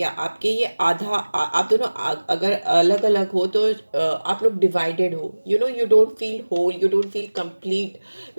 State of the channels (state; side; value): inverted; both; correlation -1.00